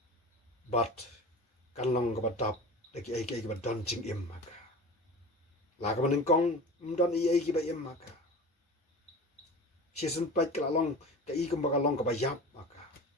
but kan long ka ba tap de ki ai ka ba don ching im maka la ka ban kong don ai ki ba im maka season pat ka long ka I ka ba long ka ba yap maka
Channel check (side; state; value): both; normal; correlation 0.34